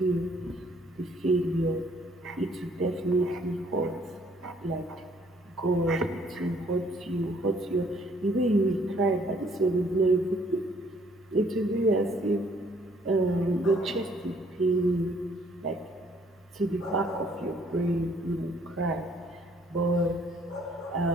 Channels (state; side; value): normal; both; correlation 0.63